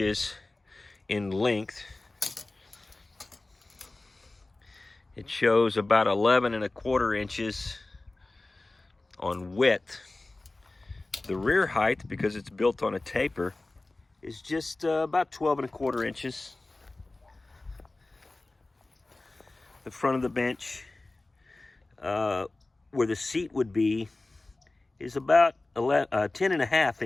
in length. It shows about 11 1/4 inches on width. The rear height, because it's built on a taper, is just about 12 1/4 inches. The front of the bench, where the seat would be, is about 10 1/2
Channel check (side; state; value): right; quieter; 3.0 dB